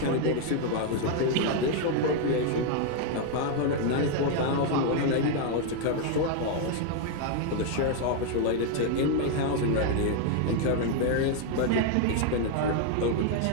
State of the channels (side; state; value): both; different; correlation 0.00